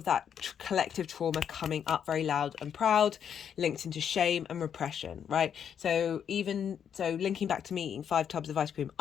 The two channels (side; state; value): right; quieter; 8.3 dB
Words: that collective trauma coming up very loud and proud, linked into shame and repression, right? So linking back to me eating 5 tubs of ice cream,